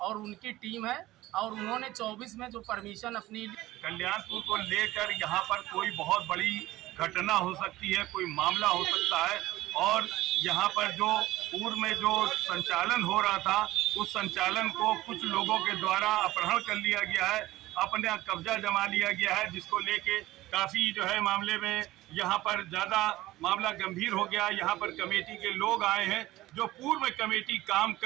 और उनकी टीम है, और उन्होंने 24 में जो परमिशन अपनी कल्याणपुर को लेकर यहाँ पर कोई बहुत बड़ी घटना हो सकती है, कोई मामला हो सकता है, और यहाँ पर जो पूर्व में जो संचालन हो रहा था उस संचालन को कुछ लोगों के द्वारा अपहरण कर लिया गया है, अपने कब्जा जमा लिया गया है, जिसको लेके काफ़ी जो है मामले में यहाँ पर ज़्यादा मामला गंभीर हो गया। यहाँ पर कमेटी के लोग आए हैं, जो पूर्व में कमेटी काम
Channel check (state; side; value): quieter; left; 16.9 dB